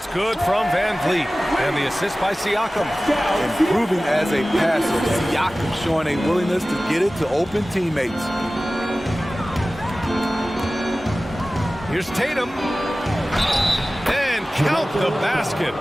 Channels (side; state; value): both; normal; correlation 0.97